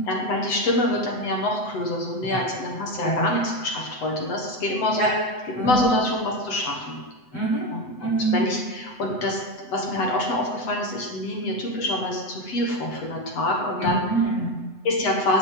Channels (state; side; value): late; right; 7.9 ms